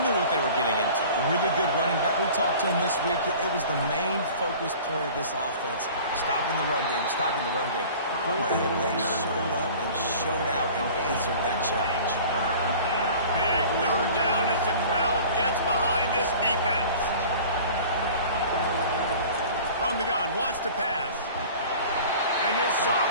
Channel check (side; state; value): both; inverted; correlation -0.43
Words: what they were getting into. A really good running back. We talked to him this week. It was the main focus point of this offense. Stopping the run game, stopping the run game. Boy, have they showed up and showed out and answered that challenge. Big 3rd down as the crowd gets behind this defense. From the gun, wants to pass. And this